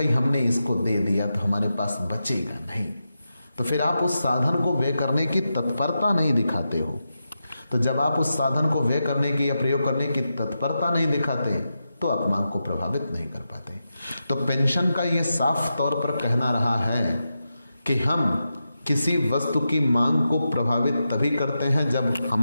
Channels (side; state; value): both; inverted; correlation -0.89